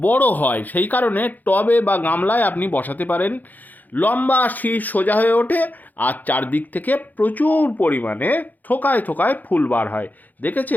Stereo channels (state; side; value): late; right; 0.083 ms